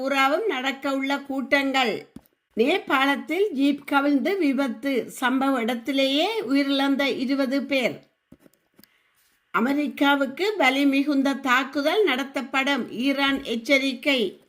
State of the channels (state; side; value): identical; both; correlation 1.00